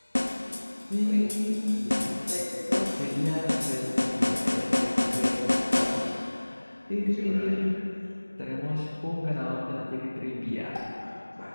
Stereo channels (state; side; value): inverted; both; correlation -1.00